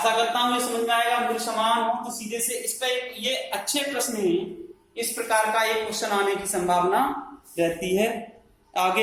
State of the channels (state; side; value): identical; both; correlation 1.00